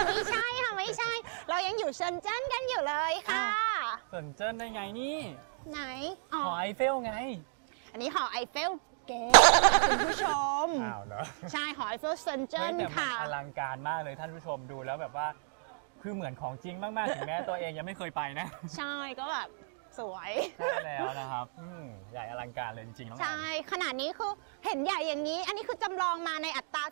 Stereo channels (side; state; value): left; silent; digital silence